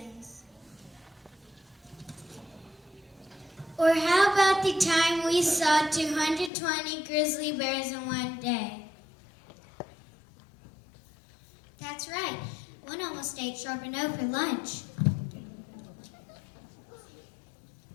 Or how about the time we saw 220 grizzly bears in one day? That's right. One almost ate Charbonneau for lunch.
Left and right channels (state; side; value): drops out; right; at 6.5 s